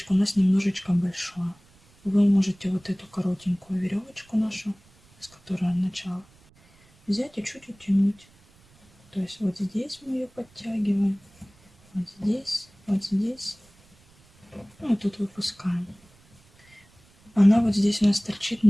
у нас немножечко большое. Вы можете вот эту коротенькую веревочку нашу, с которой начало, взять и чуть утянуть. То есть вот здесь мы ее подтягиваем, вот здесь, вот здесь. Ну и тут выпускаем. Она вот здесь у нас торчит,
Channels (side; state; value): right; noise; rumble, 30 dB below the sound